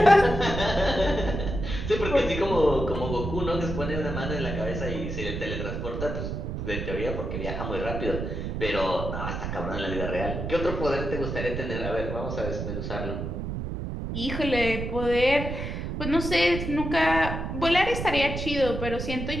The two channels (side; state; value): right; noise; rumble, 4 dB below the sound